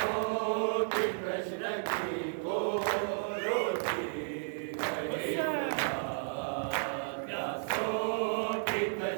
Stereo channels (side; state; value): left; silent; 56 dB below the other